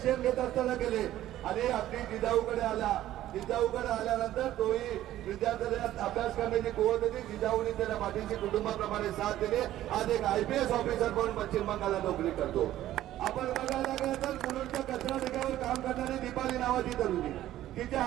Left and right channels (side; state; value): left; quieter; 13.6 dB